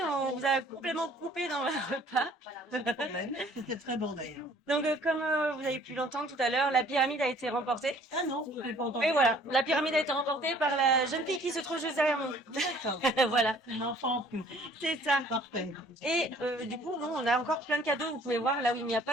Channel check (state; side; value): normal; both; correlation 0.56